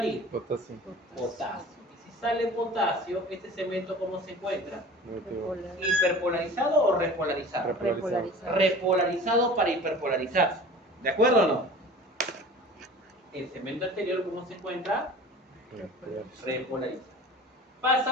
Potasio. Potasio. Y si sale potasio, este segmento, ¿cómo se encuentra? Negativo. ¿Hiperpolarizado o repolarizado? Repolarizado. Repolarizado para hiperpolarizarse. ¿De acuerdo o no? El segmento anterior, ¿cómo se encuentra? Repolarizado.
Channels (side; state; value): both; normal; correlation 0.41